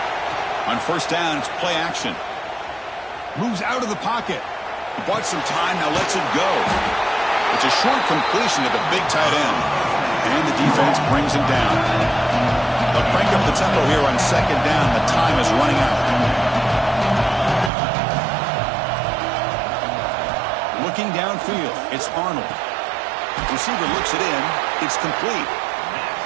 On first down, it's play action. Moves out of the pocket. Bought some time, now lets it go. It's a short completion to the big tight end. And the defense brings him down. They'll crank up the tempo here on second down. The time is running out. Looking downfield, it's Arnold. Receiver looks it in. It's complete.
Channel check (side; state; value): left; drops out; at 17.7 s